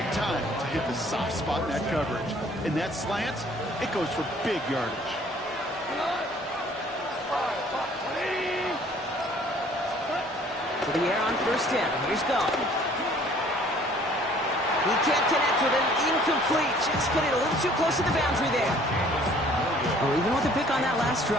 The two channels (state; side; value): normal; both; correlation 0.56